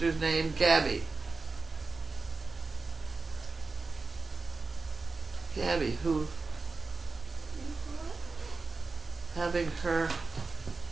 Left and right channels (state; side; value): quieter; left; 4.0 dB